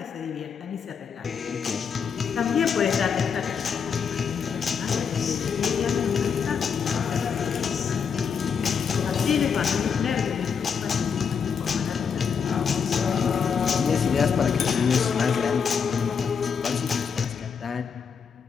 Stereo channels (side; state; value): right; quieter; 6.5 dB